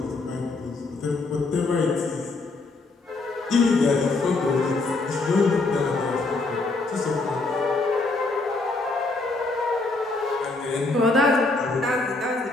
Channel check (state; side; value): quieter; right; 3.4 dB